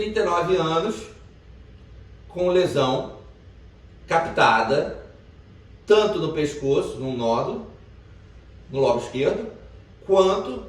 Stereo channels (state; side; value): identical; both; correlation 1.00